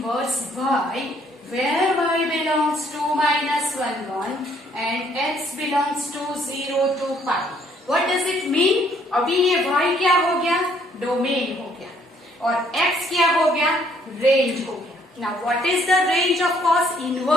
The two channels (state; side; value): normal; both; correlation 0.65